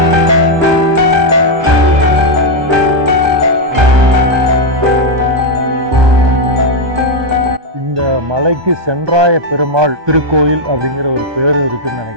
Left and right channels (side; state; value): left; late; 1.2 ms